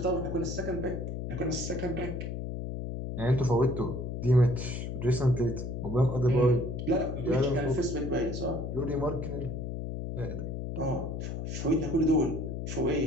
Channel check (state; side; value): noise; left; hum, 5 dB below the sound